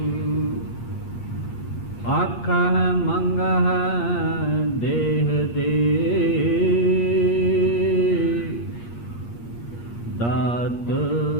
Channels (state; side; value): late; right; 8.5 ms